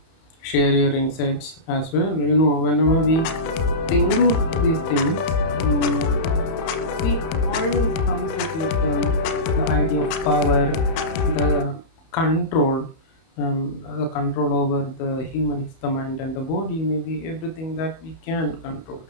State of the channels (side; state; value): right; late; 31 ms